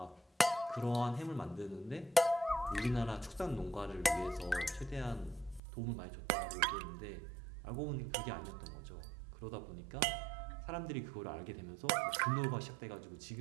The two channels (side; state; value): left; drops out; at 5.6 s